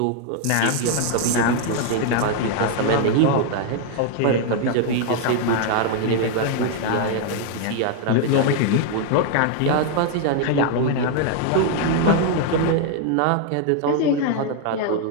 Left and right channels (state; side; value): different; both; correlation 0.00